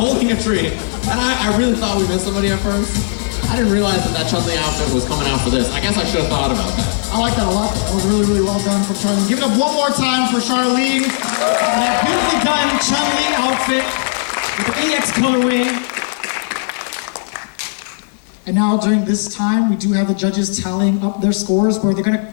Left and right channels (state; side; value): silent; right; digital silence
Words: a tree. And I really thought we missed somebody at first. I didn't realize that Chun-Li outfit was coming out for this. I guess I should have thought about that. I like that a lot. That was really, really well done from Charlene. Give it up one more time for Charlene. And that beautifully done Chun-Li outfit with the EX colorway. And now during this time, we do have the judges tallying up their scores where they're gonna